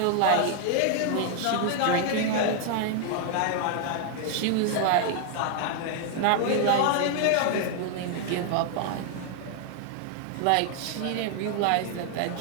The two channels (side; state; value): both; different; correlation 0.00